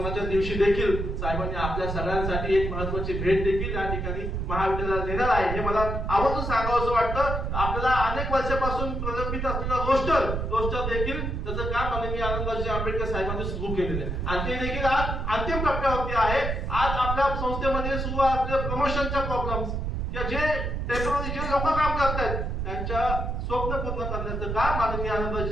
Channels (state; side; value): noise; right; rumble, 2 dB below the sound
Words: दिवशी देखील साहेबांनी आपल्या सगळ्यांसाठी एक महत्वाची भेट देखील या ठिकाणी महाविद्यालयाला देणार आहे. हे मला आवर्जून सांगावं वाटतं. आपल्याला अनेक वर्षापासून प्रलंबित असलेला रोस्टर देखील त्याचं काम माननीय आनंदाजी आंबेडकर साहेबांनी सुरू केलेलं आहे आणि ते देखील आज अंतिम टप्प्यावरती आहे. आज आपल्या संस्थेमध्ये सुरू असलेल्या प्रमोशनच्या प्रॉब्लेम्स किंवा जे टेम्पररी जे लोक काम करतात त्यांच्या स्वप्न पूर्ण करण्याचं काम माननीय